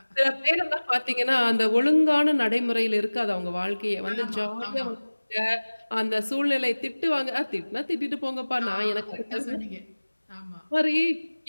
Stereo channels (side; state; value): both; inverted; correlation -1.00